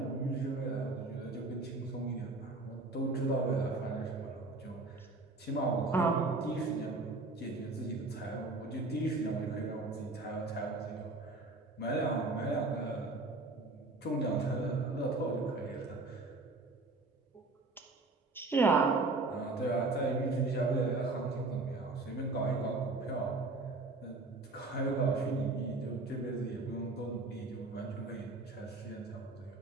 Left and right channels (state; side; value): quieter; left; 3.3 dB